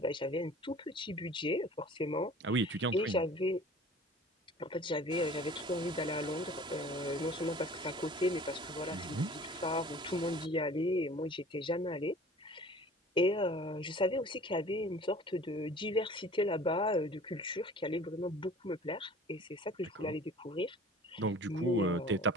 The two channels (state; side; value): normal; both; correlation 0.46